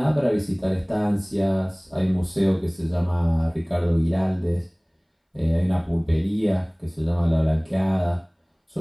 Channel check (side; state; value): both; identical; correlation 1.00